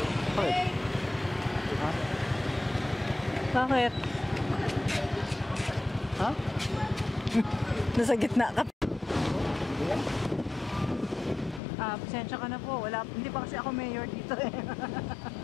Bakit? Ha? Bakit? Ha? Nasa gitna ka. Pasensya ka na po. Hindi pa kasi ako mayor dito eh.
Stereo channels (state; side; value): drops out; right; at 11.6 s